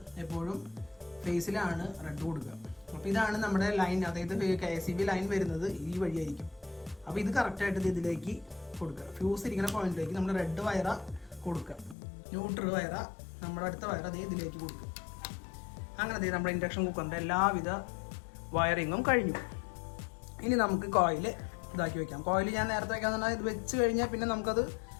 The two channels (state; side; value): drops out; right; at 12.0 s